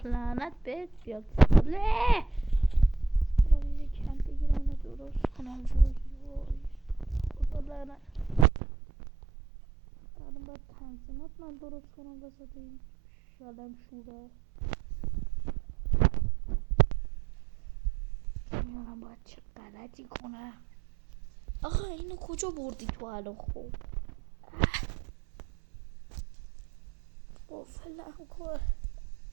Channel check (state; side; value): drops out; left; at 8.5 s